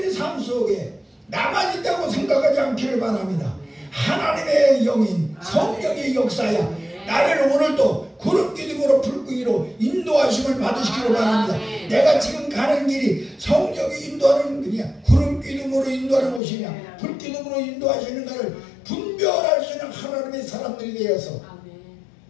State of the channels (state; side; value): drops out; right; at 16.4 s